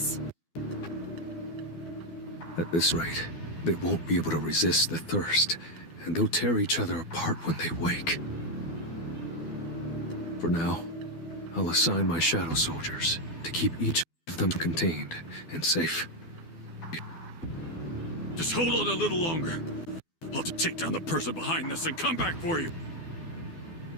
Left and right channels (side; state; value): right; late; 12 ms